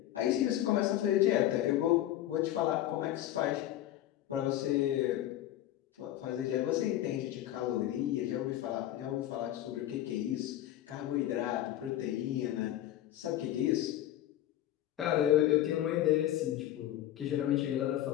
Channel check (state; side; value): quieter; right; 13.1 dB